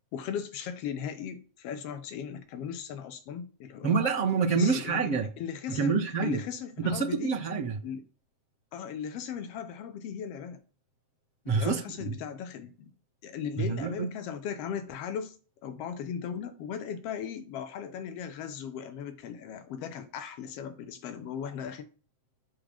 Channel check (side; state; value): right; late; 7.6 ms